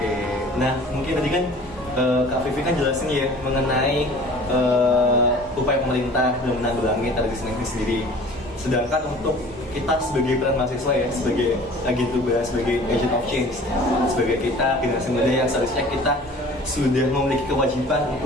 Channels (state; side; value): normal; both; correlation 0.46